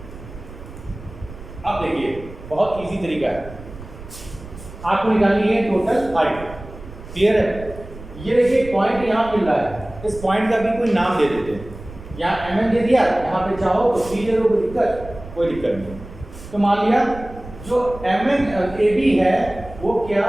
अब देखिए बहुत इजी तरीका है, आपको निकालनी है टोटल हाइट। क्लियर है? ये देखिए पॉइंट यहाँ मिल रहा है, इस पॉइंट का भी कोई नाम दे देते हैं, यहाँ mn दे दिया, यहाँ पे चाहो तो c दे दो, कोई दिक्कत नहीं। तो मान लिया जो mn AB है वो क्या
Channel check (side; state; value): right; noise; rumble, 15 dB below the sound